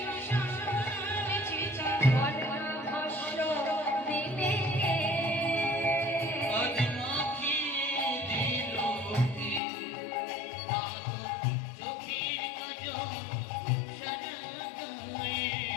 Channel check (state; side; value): drops out; right; at 9.6 s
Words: চিতা, বর্ণভস্য দিলে আজ মাখিয়ে দিল হে, চোখের কাজল সারা গায়ে